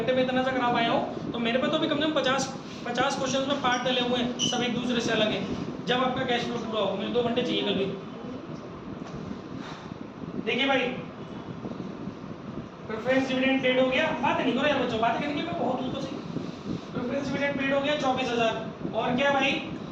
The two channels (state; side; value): identical; both; correlation 1.00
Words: में इतना सा करा पाया हूँ, तो मेरे पे तो भी कम से कम 50 क्वेश्चन में पार्ट डले हुए हैं, सब एक दूसरे से अलग है, जब आपका कैश फ्लो पूरा हो, मुझे 2 घंटे चाहिए कल भी। देखिए भाई, प्रेफरेंस डिविडेंड पेड हो गया, बात नहीं करो यार बच्चों, बात करने की मैं बहुत हूँ तो सही। प्रेफरेंस डिविडेंड पेड हो गया 24,000, और क्या भाई,